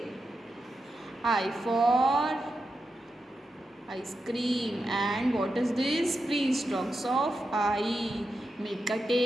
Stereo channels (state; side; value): normal; both; correlation 0.88